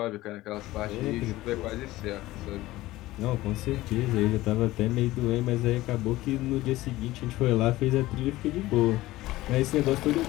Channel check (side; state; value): right; quieter; 17.4 dB